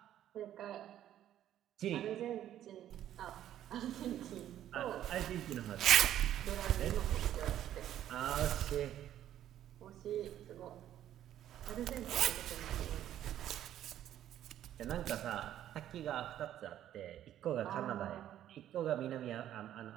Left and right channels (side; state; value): left; quieter; 11.6 dB